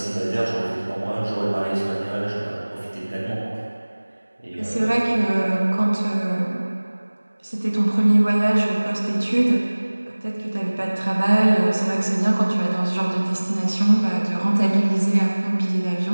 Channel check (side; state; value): both; inverted; correlation -1.00